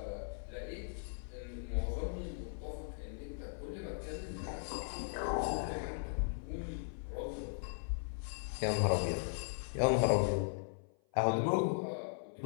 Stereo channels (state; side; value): silent; right; 52 dB below the other